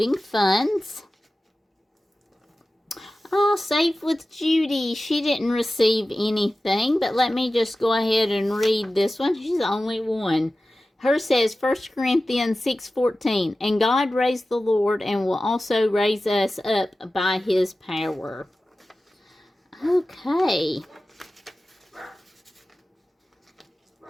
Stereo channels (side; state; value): both; normal; correlation 0.95